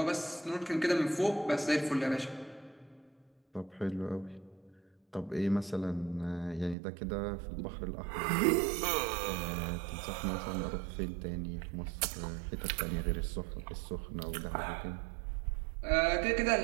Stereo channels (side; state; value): left; drops out; at 6.8 s